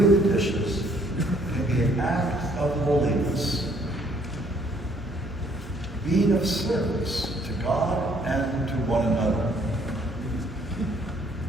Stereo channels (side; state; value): both; normal; correlation 0.64